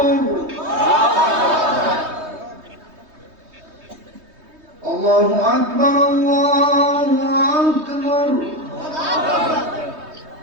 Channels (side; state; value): left; late; 3.2 ms